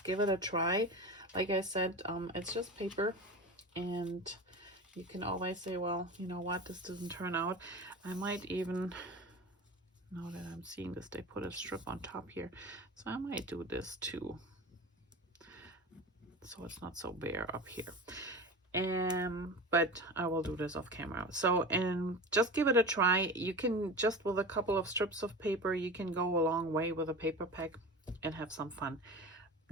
give it a try. Like I said, it's just paper, and you can always say, well, you know what, this doesn't turn out. I might even, now that I'm seeing this, they put a strip on top here, so I might do this too, so it's not so bare up here. But I will do this off camera. So, and just give it a try. You can, just with a couple of strips of paper, you can go a long way with a paper pack and have some fun.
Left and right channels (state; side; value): normal; both; correlation 0.30